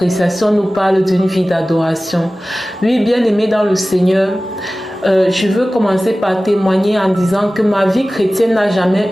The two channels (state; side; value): normal; both; correlation 0.97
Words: nous parle d'une vie d'adoration. Oui, bien-aimés dans le Seigneur, je veux commencer par témoigner en disant que ma vie chrétienne n'a jamais